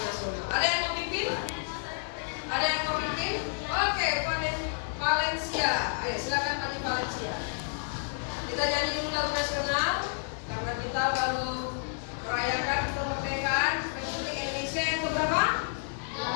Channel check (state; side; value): silent; right; 58 dB below the other